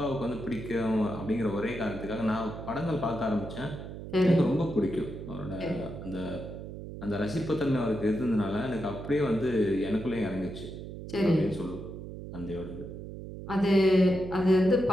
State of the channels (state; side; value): noise; right; hum, 10 dB below the sound